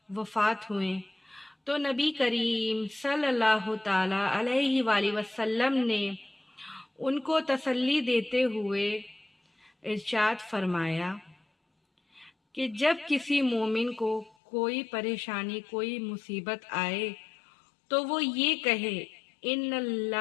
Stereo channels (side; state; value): right; drops out; at 14.4 s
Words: वफ़ात हुए तो नबी करीम सल्लल्लाहु ताला अलैहि वसल्लम ने उनको तसल्ली देते हुए इरशाद फरमाया कि जब किसी मोमिन को कोई परेशानी, कोई मुसीबत आए तो वो ये कहे, इन्ना